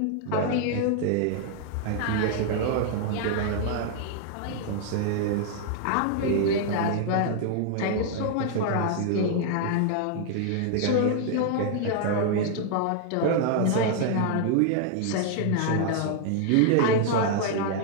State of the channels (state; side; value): different; both; correlation 0.00